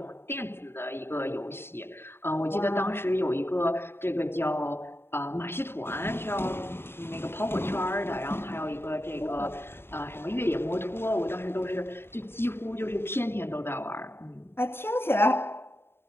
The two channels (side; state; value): right; late; 0.11 ms